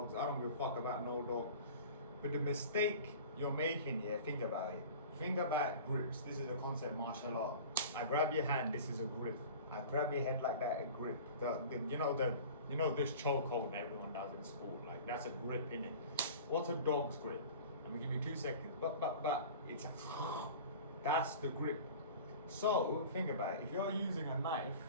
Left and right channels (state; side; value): inverted; both; correlation -0.39